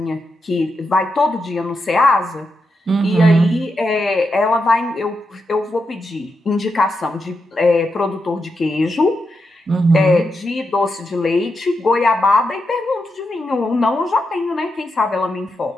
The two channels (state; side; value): normal; both; correlation 0.85